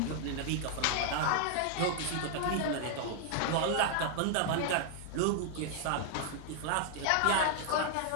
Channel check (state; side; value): different; both; correlation 0.00